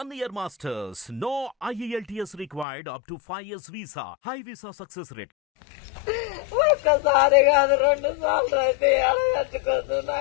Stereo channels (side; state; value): right; drops out; at 2.7 s